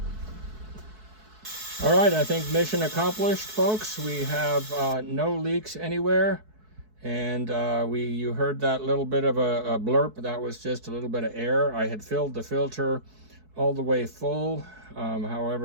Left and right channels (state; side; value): late; left; 4.6 ms